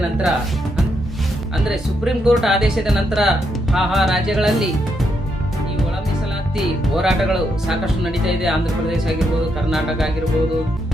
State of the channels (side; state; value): both; normal; correlation 0.79